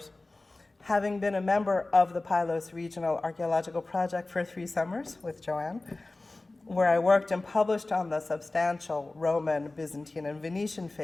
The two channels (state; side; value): quieter; right; 3.0 dB